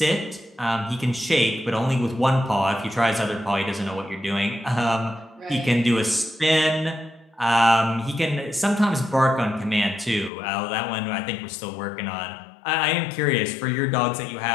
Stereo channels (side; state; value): right; drops out; at 10.3 s